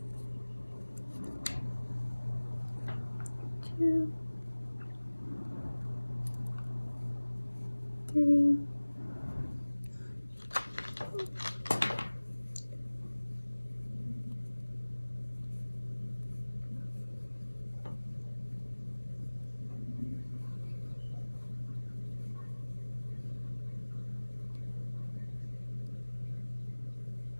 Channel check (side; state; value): both; inverted; correlation -1.00